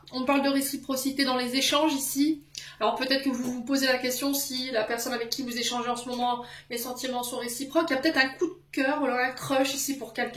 On parle de réciprocité dans les échanges ici. Alors peut-être que vous vous posez la question si la personne avec qui vous échangez en ce moment, les sentiments sont réciproques. Il y a peut-être un coup de cœur, voilà, un crush ici pour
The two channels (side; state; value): both; identical; correlation 1.00